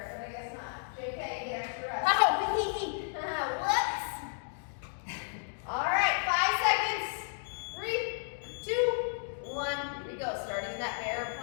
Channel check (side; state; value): right; silent; digital silence